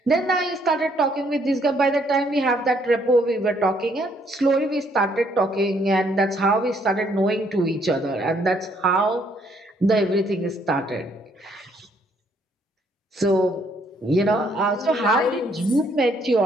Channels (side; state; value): both; normal; correlation 0.68